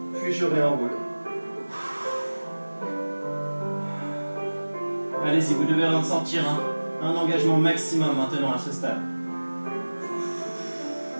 Puis je réenroule. Allez-y, vous devez ressentir un engagement maximum maintenant à ce stade.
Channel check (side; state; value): both; inverted; correlation -1.00